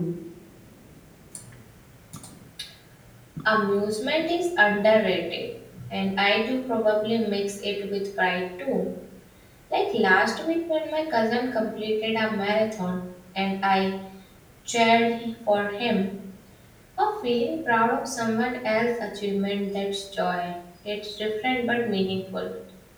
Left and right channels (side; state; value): both; identical; correlation 1.00